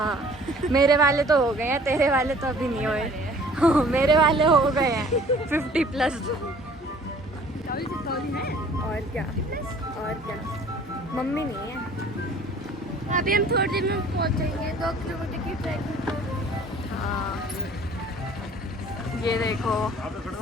मेरे वाले तो हो गए हैं, तेरे वाले तो अभी नहीं हुए। हाँ, मेरे वाले हो गए हैं 50+। और क्या मम्मी नहीं है। अभी हम थोड़ी देर में पहुंचेंगे 2 किलोमीटर की ट्रैकिंग। हाँ, ये देखो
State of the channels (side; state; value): both; normal; correlation 0.52